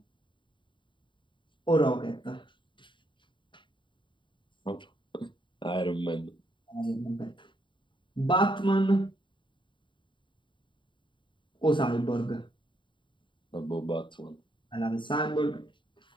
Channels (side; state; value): right; late; 0.23 ms